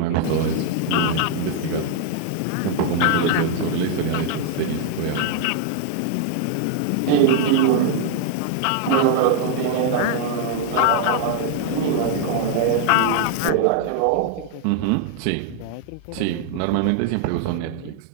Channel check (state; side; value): different; both; correlation 0.00